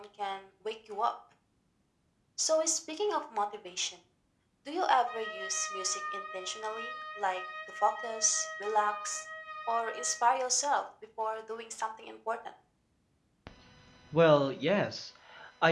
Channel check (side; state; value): both; identical; correlation 1.00